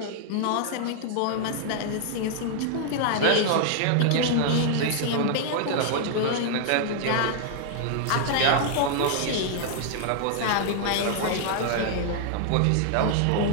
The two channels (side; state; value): both; different; correlation -0.01